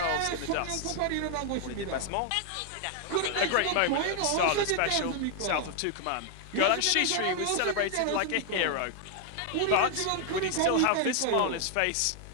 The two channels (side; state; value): both; different; correlation 0.00